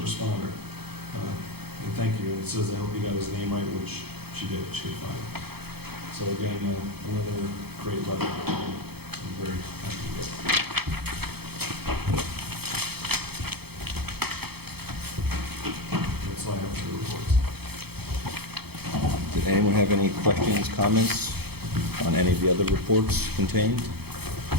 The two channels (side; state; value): left; late; 0.96 ms